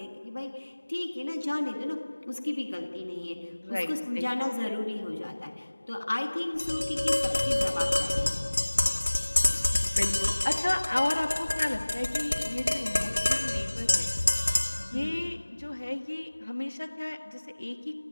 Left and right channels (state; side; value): inverted; both; correlation -1.00